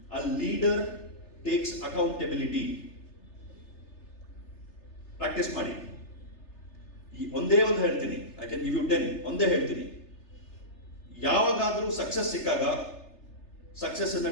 A leader takes accountability. Practice ಮಾಡಿ. ಒಂದೇ ಒಂದು ಹೇಳ್ತೀನಿ. I can give you 10. ಒಂದೇ ಹೇಳ್ತೀನಿ. ಯಾವಾಗಾದ್ರೂ success ಸಿಕ್ಕಾಗ success ಅನ್ನ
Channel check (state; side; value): late; right; 3.3 ms